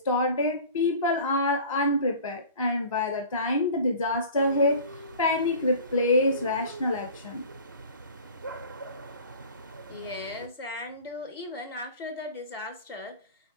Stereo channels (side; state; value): both; inverted; correlation -0.41